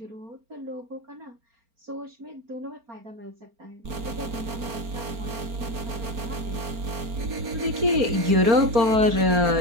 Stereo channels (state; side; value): late; left; 4.4 ms